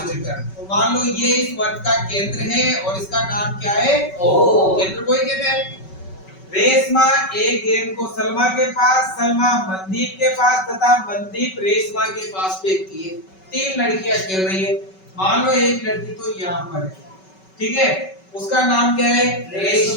मीटर। तो मान लो ये इस वर्ग का केंद्र है और इसका नाम क्या है, ओ। केंद्र को ही कहते हैं। रेशमा एक गेंद को सलमा के पास, सलमा मनदीप के पास तथा मनदीप रेशमा के पास फेंकती है। 3 लड़कियां खेल रही है। मान लो एक लड़की तो यहाँ पर है, ठीक है, उसका नाम क्या है,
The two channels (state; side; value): late; right; 5.3 ms